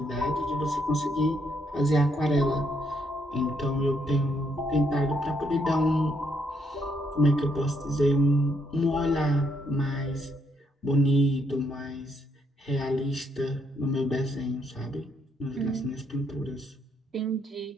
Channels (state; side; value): normal; both; correlation 0.74